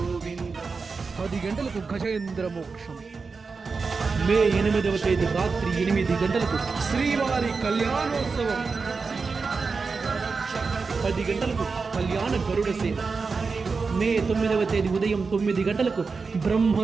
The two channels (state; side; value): quieter; left; 4.7 dB